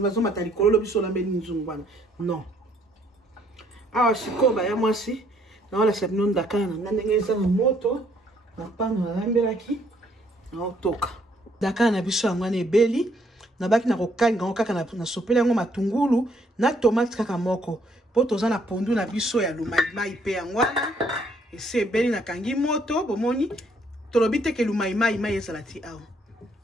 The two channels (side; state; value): both; normal; correlation 0.67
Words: bazo matali kololo biso lambe nzungu wana. Non. Awa sikoba ya mwasi na wala sabino ndakana na ndenge eza na moto na pano na lambelaki na otoka. Dakana na biso yango na ebeli na baki na kokanga ngo kaka na sopela yango matungulu na tomate kaka moko. Po toza na pondu na biso ya lumai pe yango wana. Ese ebeli na kangi moto bomoni tolobi te ke lumai ezala ti awa.